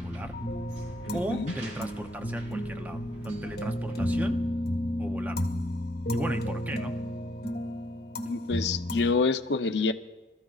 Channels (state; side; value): normal; both; correlation 0.64